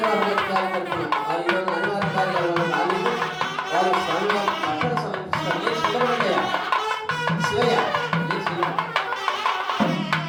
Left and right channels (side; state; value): both; identical; correlation 1.00